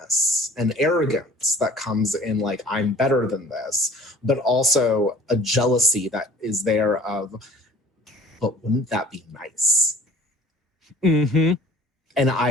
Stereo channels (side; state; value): both; normal; correlation 0.50